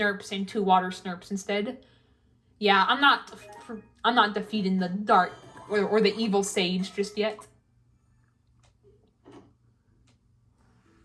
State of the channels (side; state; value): both; identical; correlation 1.00